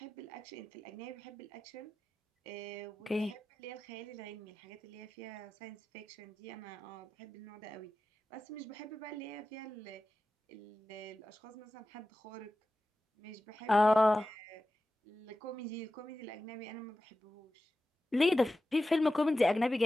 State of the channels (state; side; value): normal; both; correlation 0.93